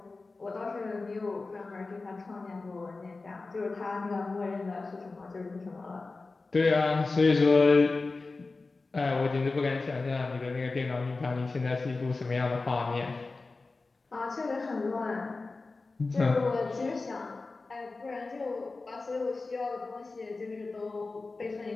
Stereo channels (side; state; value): right; quieter; 3.7 dB